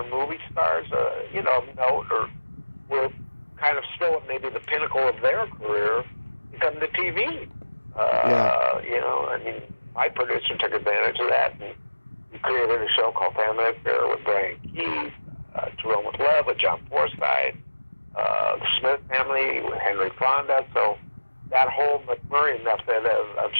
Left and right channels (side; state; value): both; inverted; correlation -1.00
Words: movie stars, note or were kind of still at maybe the pinnacle of their career, to come to TV. My producer took advantage of that, and he created a show called Family Affair with Brian Keith, Jerome with Love with John Forsythe, the Smith family with Henry Fonda. So that whole McMurray method of